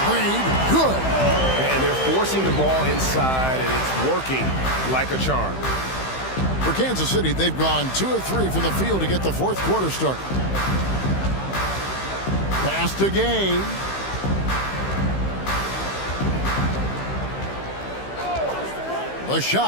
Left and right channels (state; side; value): late; right; 15 ms